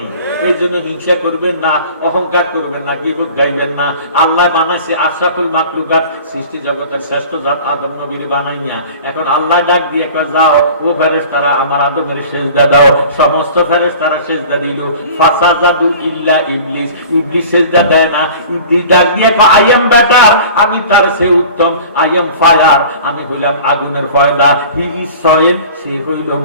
এই জন্য হিংসা করবেন না, অহংকার করবেন না, গীবত গাইবেন না। আল্লাহ বানাইছে আশরাফুল মাখলুকাত, সৃষ্টি জগতের শ্রেষ্ঠ জাত আদম নবীর বানাইয়া। এখন আল্লাহ ডাক দিয়ে কয় যাও ও ফেরেশতারা আমার আদমের সিজদা দাও। সমস্ত ফেরেশতারা সিজদা দিল। ফাসাজাদু ইল্লা ইবলিস। ইবলিস সিজদা দেয় না। ইবলিস ডাক দিয়ে কয় আই এম বেটার, আমি তার চেয়ে উত্তম। আই এম ফায়ার, আমি হইলাম আগুনের ফয়দা। হি ইজ সয়েল, সে হইল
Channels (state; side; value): inverted; both; correlation -0.42